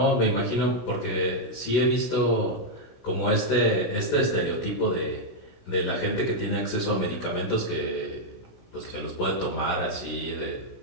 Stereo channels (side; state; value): right; late; 16 ms